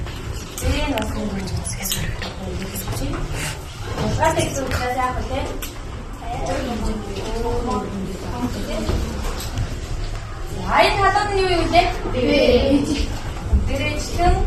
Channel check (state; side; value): identical; both; correlation 1.00